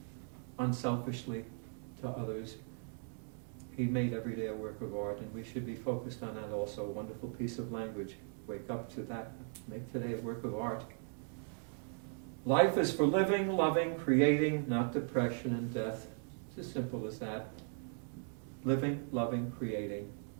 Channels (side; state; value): left; silent; 52 dB below the other